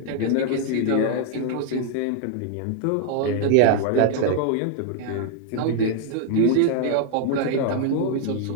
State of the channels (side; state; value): both; different; correlation 0.00